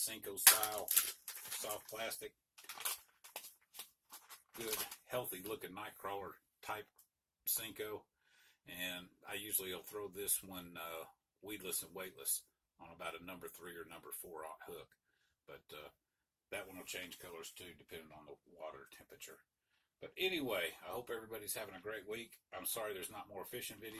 style, soft plastic, good, healthy looking night crawler type Senko. And I usually will throw this one weedless and weightless on about a number 3 or number 4 hook. But that one will change colors too, depending on the water temperature. But anyway, I hope everybody's having a great week. I'm sorry there's not more fishing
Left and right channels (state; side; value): identical; both; correlation 1.00